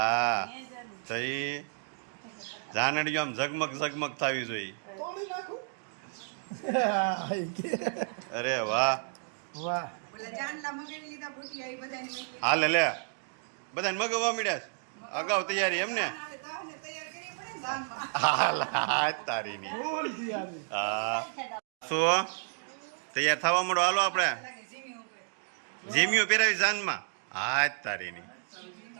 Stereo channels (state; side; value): silent; left; digital silence